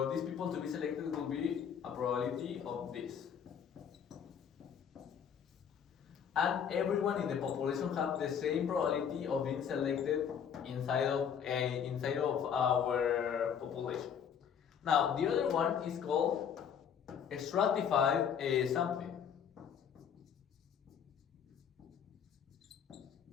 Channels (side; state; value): right; quieter; 7.8 dB